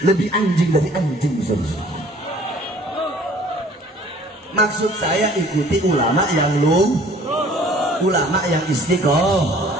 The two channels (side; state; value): both; normal; correlation 0.53